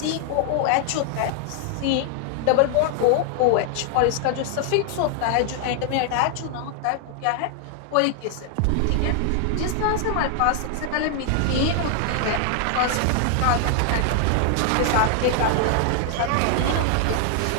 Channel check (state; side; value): different; both; correlation 0.00